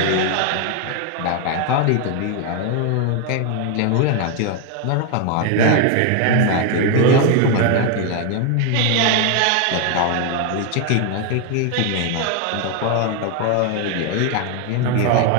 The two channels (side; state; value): both; different; correlation 0.01